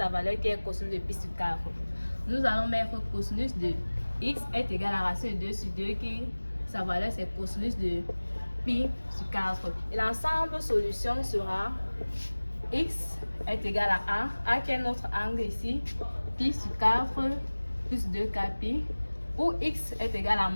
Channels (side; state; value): both; inverted; correlation -1.00